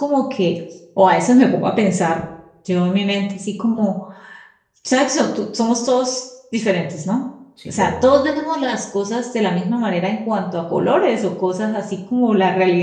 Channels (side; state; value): both; identical; correlation 1.00